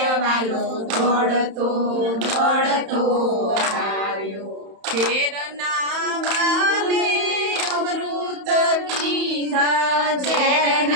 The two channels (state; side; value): late; left; 31 ms